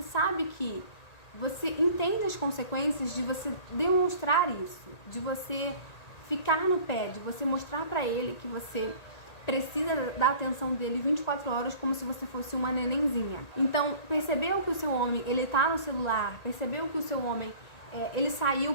sabe que você entende as consequências de você demonstrar isso, de você ficar no pé, de você mostrar pra ele que você precisa da atenção dele 24 horas como se você fosse uma nenenzinha. Então, percebeu que o seu homem, ele tá no celular, percebeu que o seu homem, ele saiu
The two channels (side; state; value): right; late; 1.8 ms